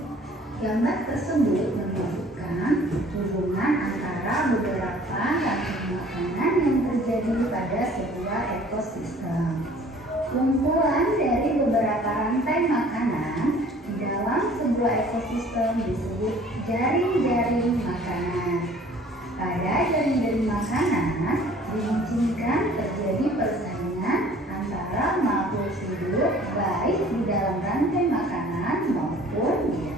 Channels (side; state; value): both; normal; correlation 0.52